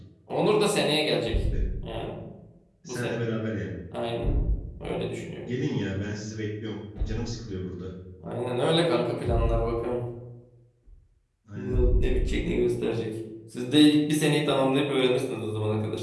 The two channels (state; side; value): identical; both; correlation 1.00